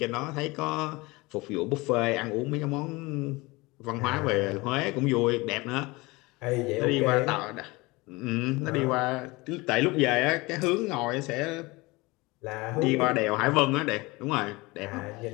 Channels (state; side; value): quieter; right; 23.2 dB